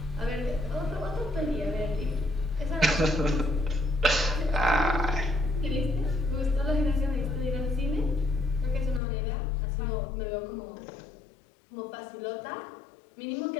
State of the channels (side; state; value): right; drops out; at 9.0 s